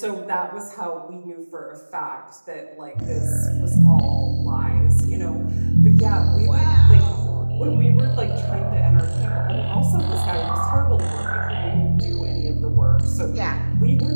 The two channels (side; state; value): both; inverted; correlation -1.00